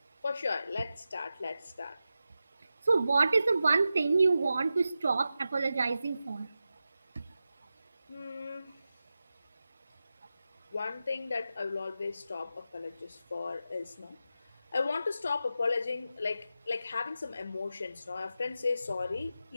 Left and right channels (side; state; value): both; inverted; correlation -0.92